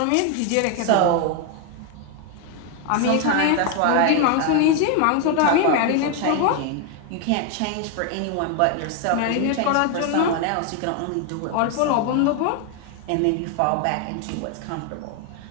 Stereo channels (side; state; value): both; different; correlation 0.01